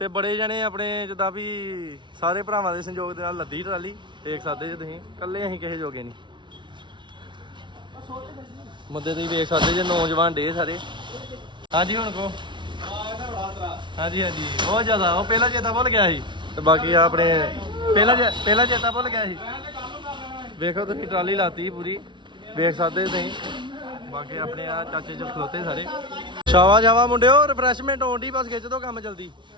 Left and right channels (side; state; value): left; late; 0.23 ms